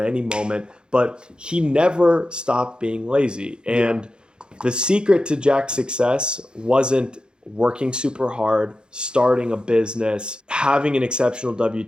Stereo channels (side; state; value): left; late; 0.049 ms